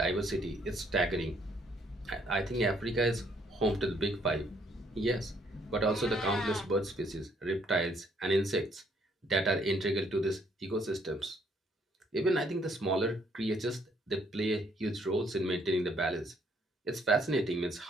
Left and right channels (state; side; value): normal; both; correlation 0.67